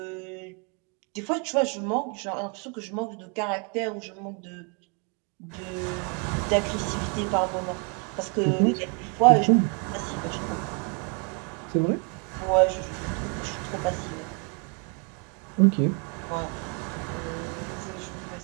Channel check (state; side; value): quieter; left; 36.0 dB